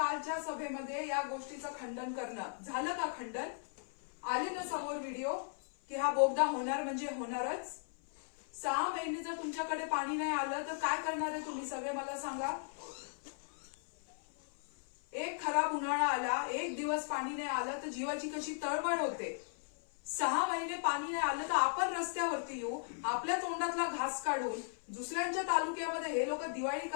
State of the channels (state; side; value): silent; right; 53 dB below the other